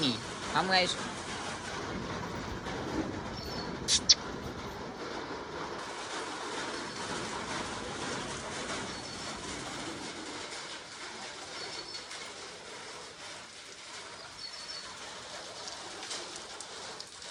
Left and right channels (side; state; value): both; identical; correlation 1.00